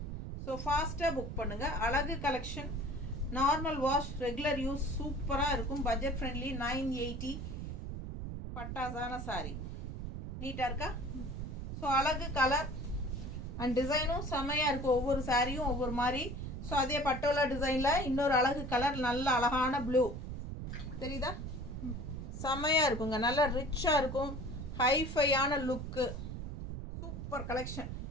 ஸோ ஃபாஸ்ட்டாக புக் பண்ணுங்கள். அழகு collection, normal wash, regular use, சூப்பராக இருக்கும். Budget friendly, 980. பட்டாசான சாரி. நீட்டாக இருக்கா? ஸோ அழகு கலர் அண்ட் டிசைனும் செம்மையாக இருக்கும். ஒவ்வொரு சாரியும் ஒவ்வொரு மாதிரி. ஸோ அதே பட்டோலா டிசைனில் இன்னொரு அழகு கலர், நல்ல அழகான ப்ளூ. தெரியுதா? செம்மையாக இருக்குங்க, நல்லா ரிச்சாக இருக்கும். ஹைஃபையான லுக்கு, சூப்பர் கலெக்ஷன்.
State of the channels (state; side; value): noise; right; rumble, 6 dB below the sound